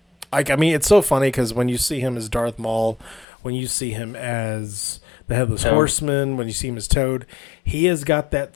I mean, it's so funny because when you see him as Darth Maul, when you see him as the Headless Horseman, when you see him as Toad, he has got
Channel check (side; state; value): right; drops out; at 3.2 s